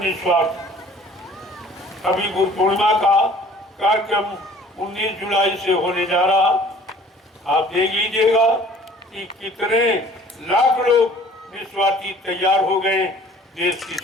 निस्वार्थ। अभी गुरु पूर्णिमा का कार्यक्रम 19 जुलाई से होने जा रहा। आप देख लीजिएगा कि कितने लाख लोग निस्वार्थी तैयार हो गए देश की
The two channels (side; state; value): both; normal; correlation 0.52